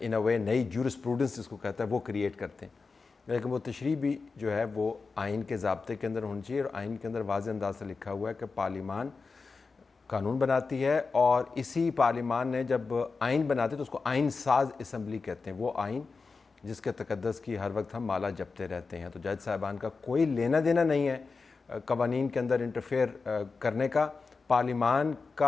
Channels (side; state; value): right; quieter; 4.4 dB